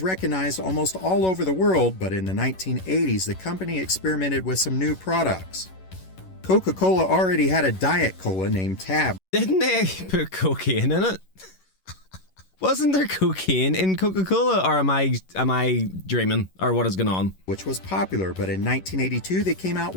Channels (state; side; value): late; right; 11 ms